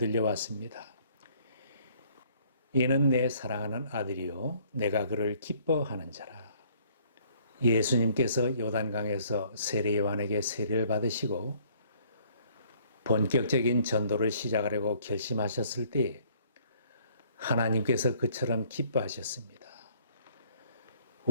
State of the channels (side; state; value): both; inverted; correlation -0.61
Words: 이는 내 사랑하는 아들이요 내가 그를 기뻐하는 자라. 예수님께서 요단강에서 세례 요한에게 세례를 받으시고 본격적인 전도를 시작하려고 결심하셨을 때 하나님께서 그처럼 기뻐하셨습니다.